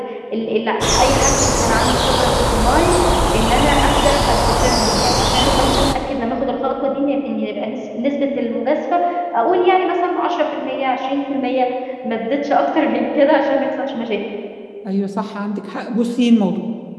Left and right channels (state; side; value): identical; both; correlation 1.00